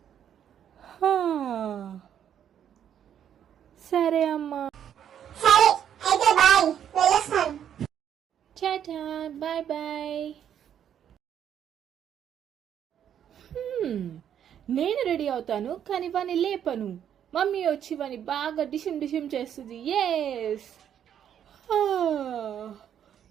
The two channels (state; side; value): quieter; left; 9.4 dB